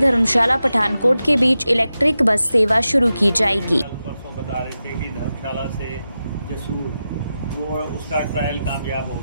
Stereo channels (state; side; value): inverted; both; correlation -0.91